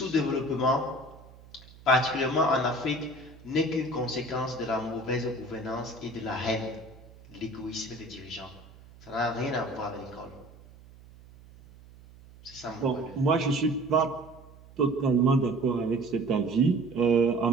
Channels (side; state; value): right; noise; hum, 22 dB below the sound